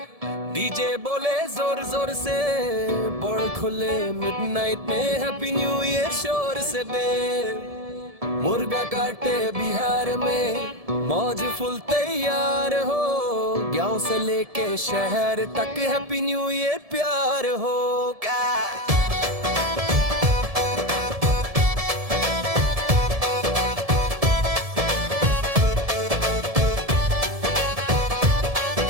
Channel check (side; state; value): left; late; 1.7 ms